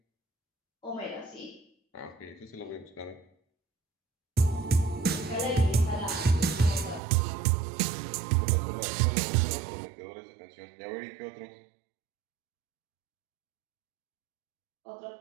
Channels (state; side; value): drops out; left; at 7.0 s